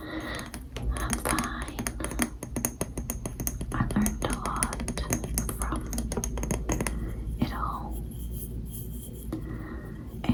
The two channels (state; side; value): identical; both; correlation 1.00